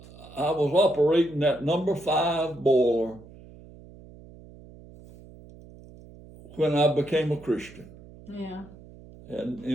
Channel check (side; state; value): right; noise; hum, 20 dB below the sound